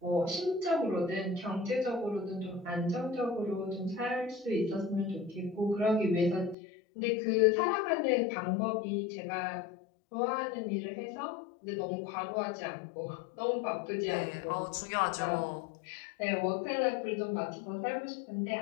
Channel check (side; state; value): right; drops out; at 6.6 s